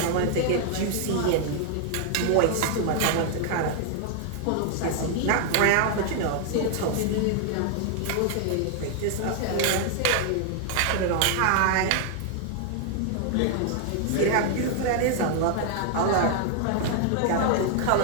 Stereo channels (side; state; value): both; different; correlation 0.00